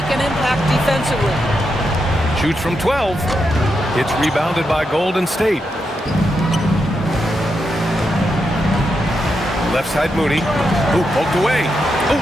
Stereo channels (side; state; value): both; normal; correlation 0.84